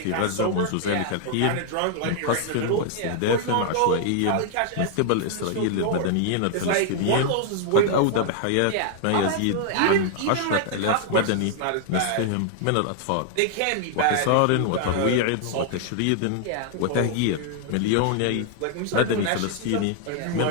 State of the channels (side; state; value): both; different; correlation 0.00